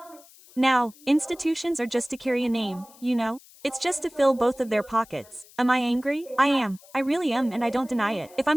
Now, institutions are just to carry a name, you know? It's just to fill both of their pockets. Am I angry? I am. I really am and I don't deny it. If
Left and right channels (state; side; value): noise; left; hiss, 24 dB below the sound